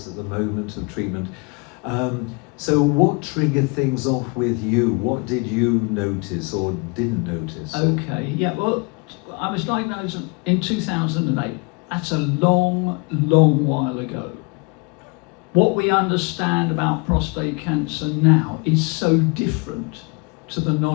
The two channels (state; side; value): quieter; right; 30.5 dB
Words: at the moment of treatment. So what triggered things off with you? What did you notice or didn't notice? Okay, yeah, well, I was diagnosed in 2008. That's a long, long while ago. What we understand about prostate cancer now is so different to the